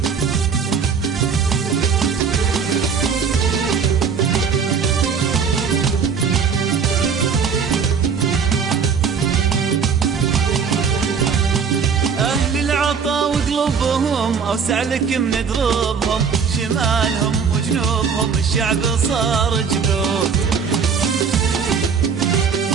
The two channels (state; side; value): quieter; left; 6.2 dB